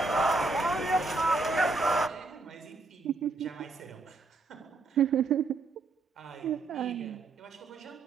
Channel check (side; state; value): left; quieter; 3.6 dB